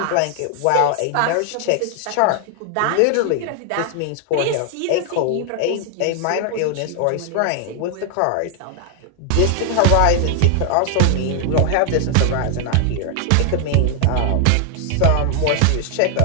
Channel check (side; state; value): both; different; correlation 0.00